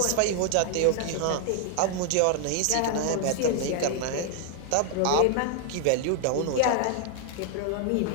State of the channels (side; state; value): both; different; correlation 0.00